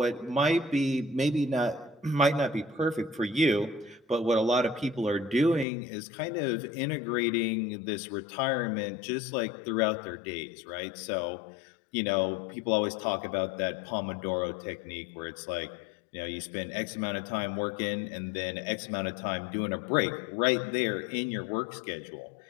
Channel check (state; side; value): drops out; right; at 5.7 s